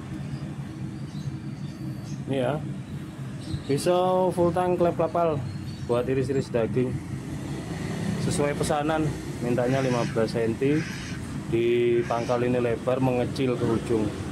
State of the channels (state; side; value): identical; both; correlation 1.00